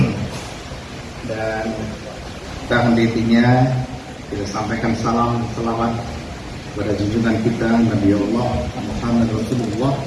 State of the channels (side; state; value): both; identical; correlation 1.00